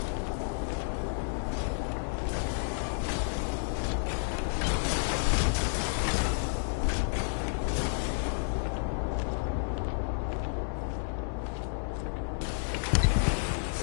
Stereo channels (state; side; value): silent; right; digital silence